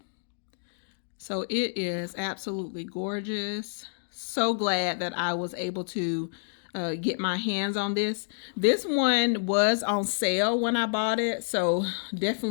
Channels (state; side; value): silent; right; digital silence